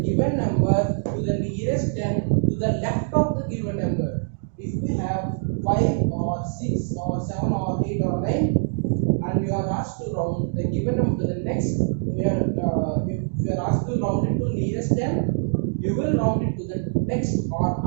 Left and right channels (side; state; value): left; silent; digital silence